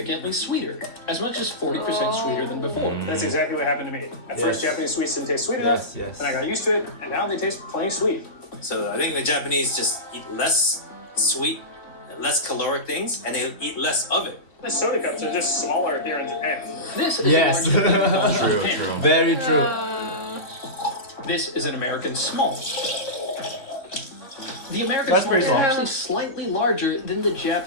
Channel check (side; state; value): right; late; 3.1 ms